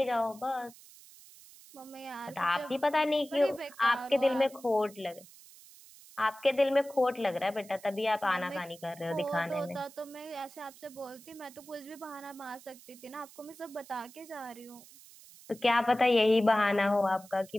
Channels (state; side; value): noise; right; hiss, 21 dB below the sound